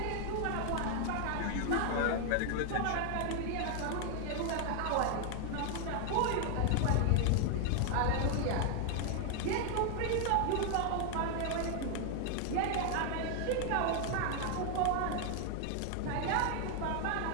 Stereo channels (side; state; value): both; different; correlation 0.00